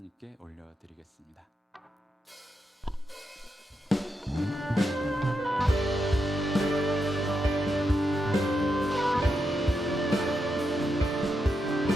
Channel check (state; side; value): normal; both; correlation 0.84